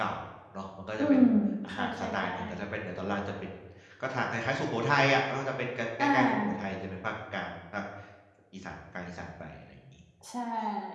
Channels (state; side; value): identical; both; correlation 1.00